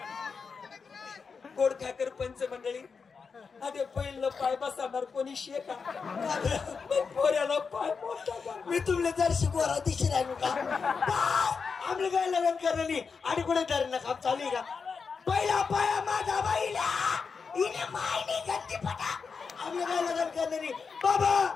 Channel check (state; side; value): quieter; right; 5.3 dB